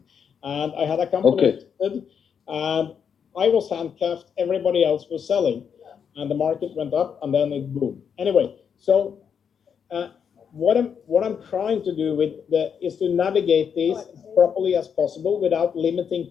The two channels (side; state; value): right; quieter; 7.3 dB